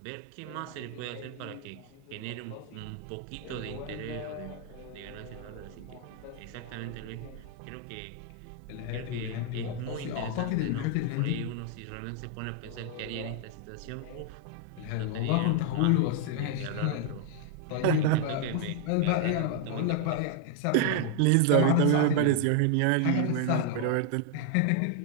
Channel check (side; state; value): both; different; correlation 0.00